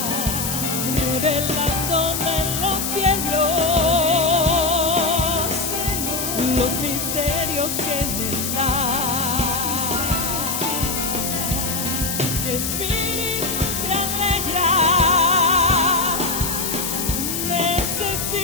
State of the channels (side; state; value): left; noise; hiss, 2 dB below the sound